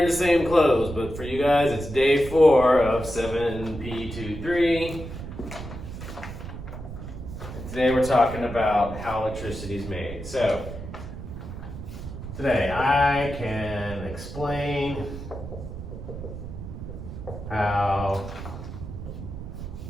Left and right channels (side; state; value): right; noise; rumble, 10 dB below the sound